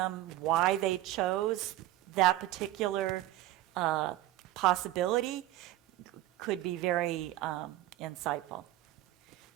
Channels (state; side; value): quieter; left; 15.3 dB